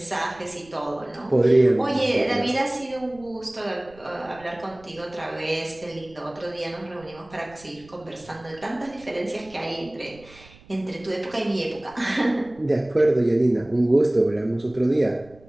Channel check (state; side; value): noise; right; rumble, 24 dB below the sound